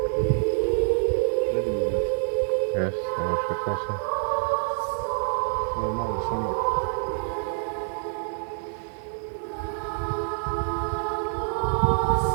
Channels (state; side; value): silent; left; digital silence